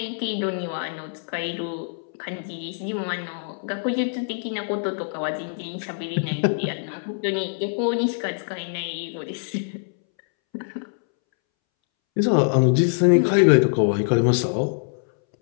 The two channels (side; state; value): right; silent; 62 dB below the other